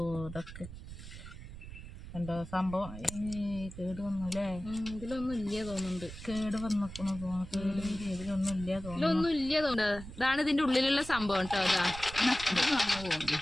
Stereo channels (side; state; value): right; noise; rumble, 12 dB below the sound